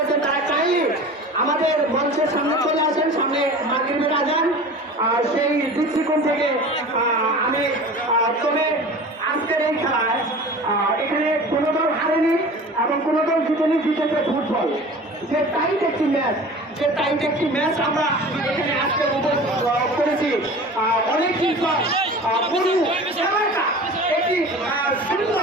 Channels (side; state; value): both; normal; correlation 0.39